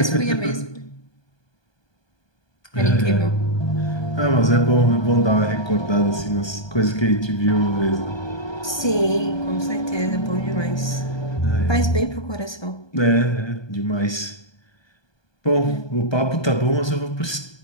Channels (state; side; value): late; right; 1.2 ms